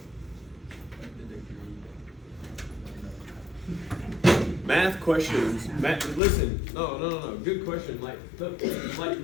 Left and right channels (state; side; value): drops out; right; at 6.2 s